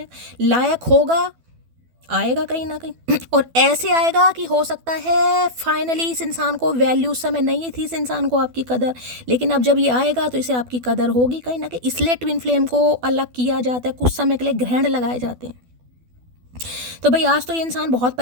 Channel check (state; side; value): late; left; 12 ms